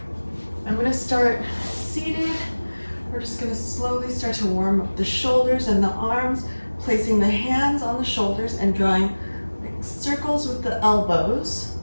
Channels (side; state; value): both; inverted; correlation -1.00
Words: going to start seated. We're just going to slowly start to warm up the shoulders and the arms, placing the hands on the shoulders and drawing like circles with the elbows